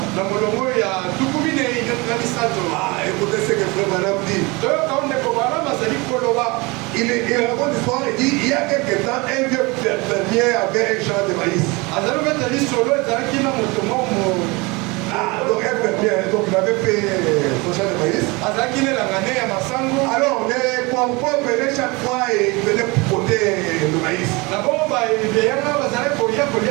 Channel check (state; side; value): quieter; left; 25.7 dB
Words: Écoutez ce que Frère Madame dit. Il raconte l'histoire et dit il y a quelque temps, un vieux fermier avait un champ de maïs. Donc un fermier, donc il avait fait son champ de maïs. Alors les corbeaux venaient chaque fois et venaient poter le maïs.